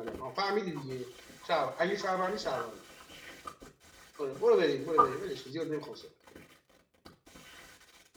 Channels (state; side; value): identical; both; correlation 1.00